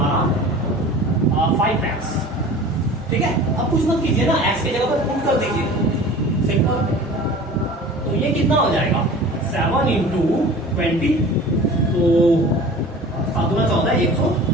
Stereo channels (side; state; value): both; normal; correlation 0.41